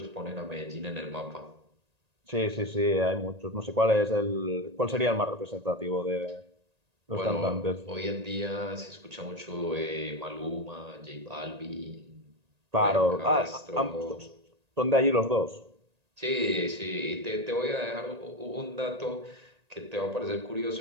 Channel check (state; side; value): late; left; 1.8 ms